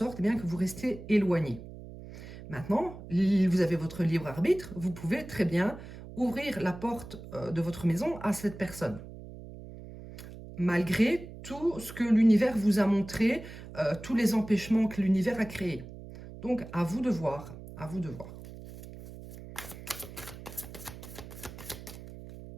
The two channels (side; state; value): right; noise; hum, 14 dB below the sound